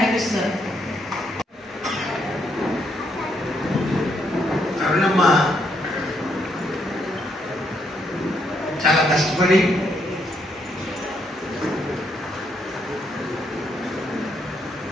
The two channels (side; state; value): both; normal; correlation 0.74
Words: అరుణమ్మ చాలా కష్టపడి